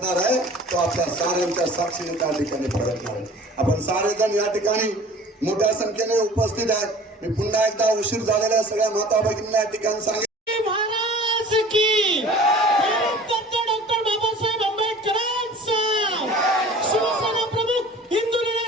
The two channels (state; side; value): normal; both; correlation 0.45